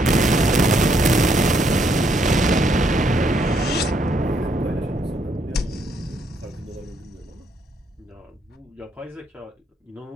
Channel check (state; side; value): normal; both; correlation 0.72